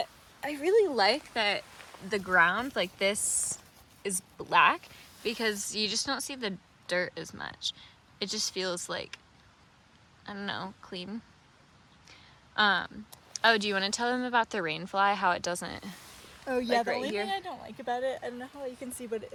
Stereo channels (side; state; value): both; identical; correlation 1.00